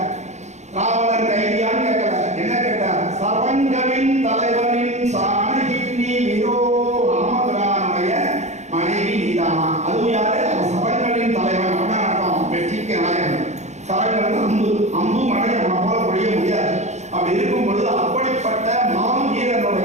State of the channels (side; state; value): left; late; 0.33 ms